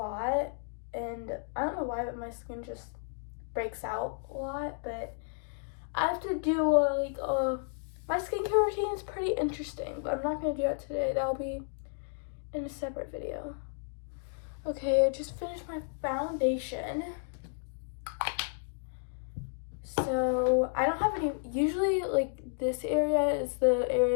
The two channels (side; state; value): right; silent; digital silence